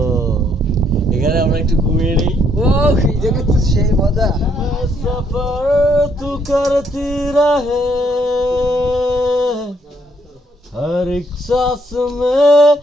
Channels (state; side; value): normal; both; correlation 0.70